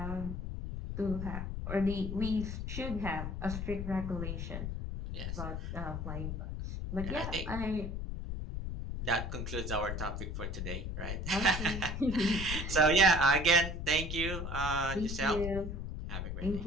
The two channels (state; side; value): noise; left; rumble, 4 dB below the sound